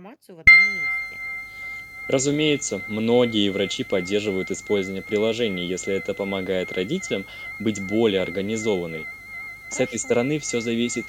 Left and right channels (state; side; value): identical; both; correlation 1.00